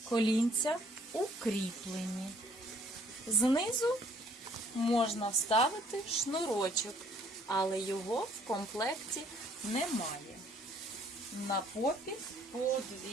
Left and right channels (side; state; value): both; normal; correlation 0.61